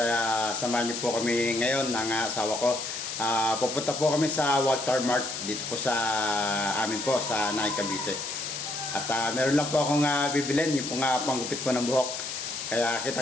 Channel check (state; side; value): noise; left; hiss, 6 dB below the sound